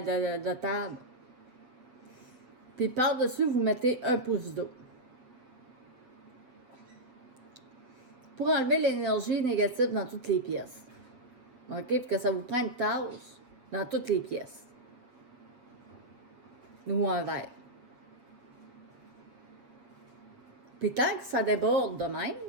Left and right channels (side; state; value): left; late; 7.8 ms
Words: table. Puis par-dessus, vous mettez 1 pouce d'eau. Pour enlever l'énergie négative dans toutes les pièces. OK? Puis que ça vous prend une tasse dans toutes les pièces. Ou un verre. Puis tant que ça déborde de